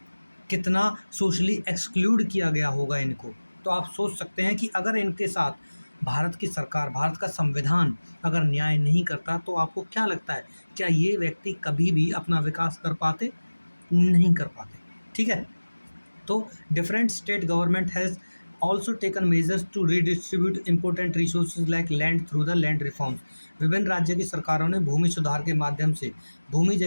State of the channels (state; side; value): inverted; both; correlation -1.00